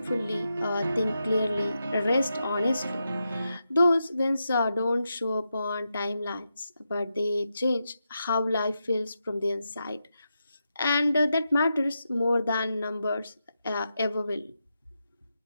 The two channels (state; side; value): inverted; both; correlation -0.87